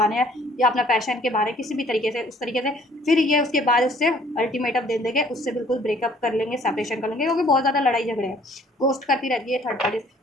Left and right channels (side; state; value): both; normal; correlation 0.58